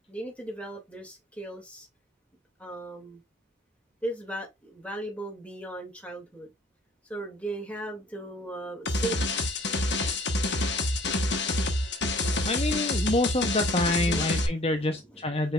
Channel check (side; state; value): both; normal; correlation 0.55